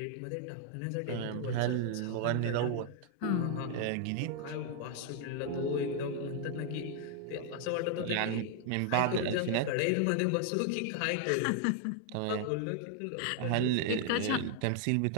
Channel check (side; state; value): both; different; correlation 0.00